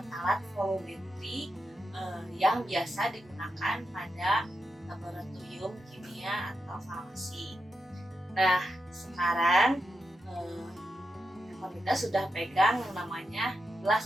volumetri yang biasa digunakan pada laboratorium kimia atau farmasi. Nah, sekarang kita sudah pegang yang namanya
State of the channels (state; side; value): normal; both; correlation 0.87